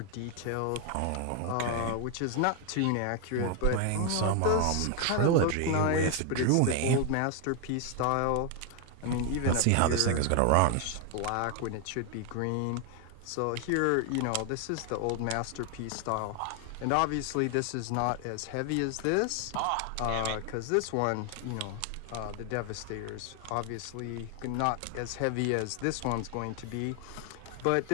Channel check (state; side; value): different; both; correlation 0.01